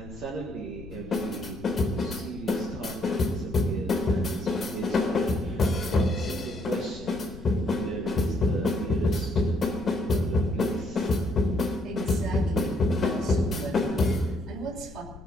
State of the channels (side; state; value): left; noise; rumble, 16 dB below the sound